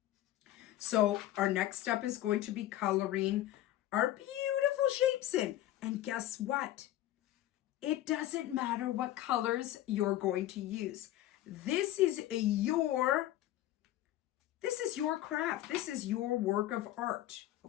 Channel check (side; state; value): right; quieter; 14.0 dB